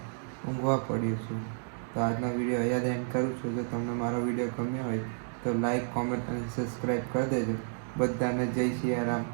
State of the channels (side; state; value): left; silent; digital silence